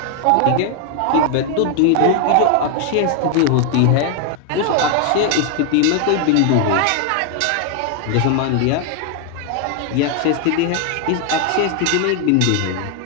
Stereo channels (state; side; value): different; both; correlation 0.00